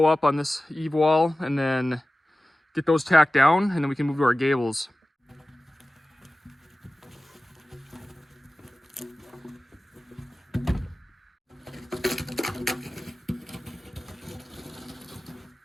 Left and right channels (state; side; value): normal; both; correlation 0.96